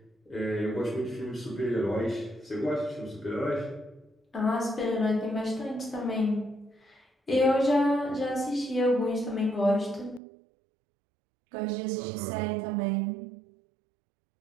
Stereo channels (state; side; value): drops out; left; at 10.2 s